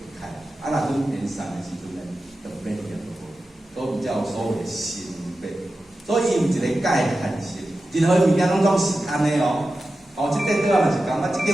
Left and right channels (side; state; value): both; normal; correlation 0.93